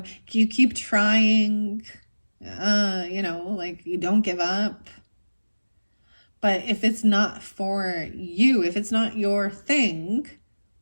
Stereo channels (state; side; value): inverted; both; correlation -1.00